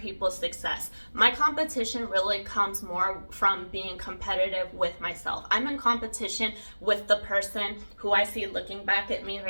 people's success. My competition really comes more from being competitive with myself. I'm in competition with the person who I see looking back at me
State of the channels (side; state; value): both; inverted; correlation -1.00